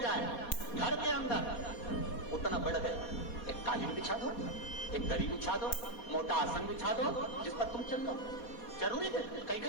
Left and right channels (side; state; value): right; late; 4.2 ms